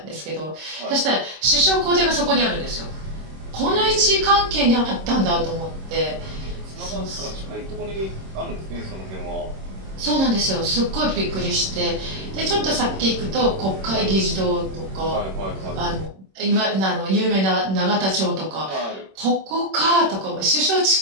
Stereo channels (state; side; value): late; left; 26 ms